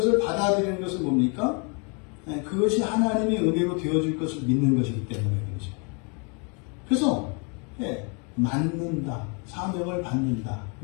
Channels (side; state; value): right; quieter; 35.3 dB